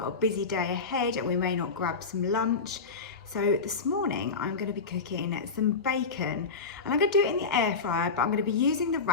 a busy day ahead and we may not grab some lunch. So this morning I'm going to be cooking some bacon and I'm going to do it in the air fryer, but I'm going to be using the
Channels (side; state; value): right; quieter; 4.6 dB